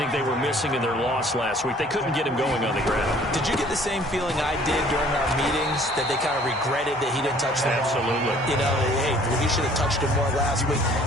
they were missing in their loss last week. They couldn't get him going on the ground. Did you get the same feeling I did during our meetings, that they kind of regretted that he didn't touch the ball? Absolutely. You know, hey, he should have touched him more last week.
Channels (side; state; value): both; normal; correlation 0.55